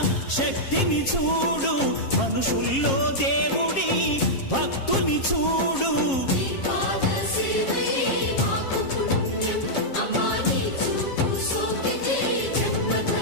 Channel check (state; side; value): late; right; 7.4 ms